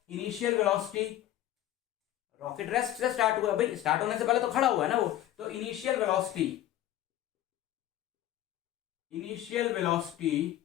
इनिशियल वेलोसिटी, रॉकेट रेस्ट से स्टार्ट हुआ भाई, स्टार्ट होने से पहले तो खड़ा हुआ है ना वो, तो इनिशियल वेलोसिटी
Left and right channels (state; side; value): quieter; right; 13.1 dB